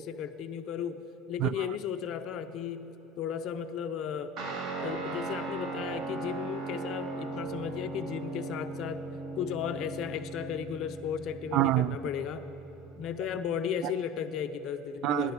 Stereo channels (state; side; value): normal; both; correlation 0.34